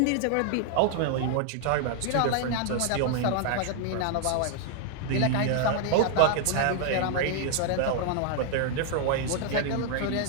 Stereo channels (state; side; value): different; both; correlation 0.00